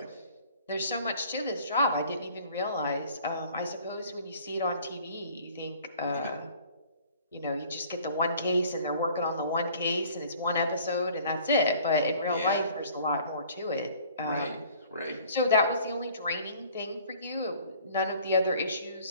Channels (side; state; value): both; inverted; correlation -0.53